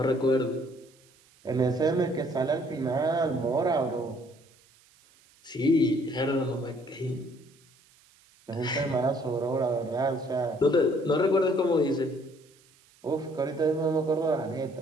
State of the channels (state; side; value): noise; right; hiss, 30 dB below the sound